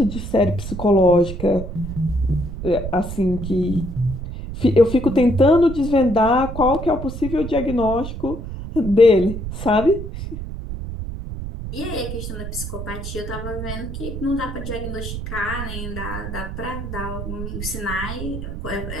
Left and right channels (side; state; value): right; noise; rumble, 7 dB below the sound